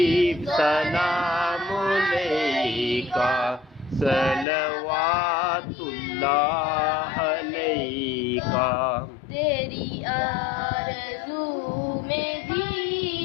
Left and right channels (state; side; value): drops out; right; at 4.5 s